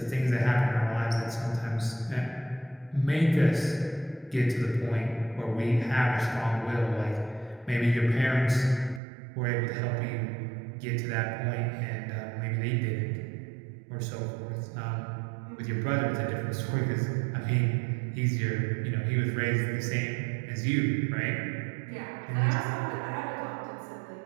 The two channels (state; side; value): drops out; left; at 9.0 s